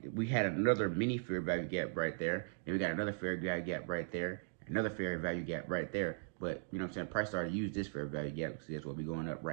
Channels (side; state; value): left; silent; digital silence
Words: we had another mini fair value gap right there. And we got another fair value gap right there. Another fair value gap right there. But, you know what I'm saying, price started to use this fair value gap because that's what we're going up